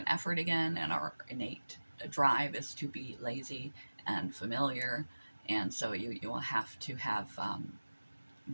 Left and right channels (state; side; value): inverted; both; correlation -1.00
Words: effort again. And our innate drive is to be lazy and familiar, and so you will have to have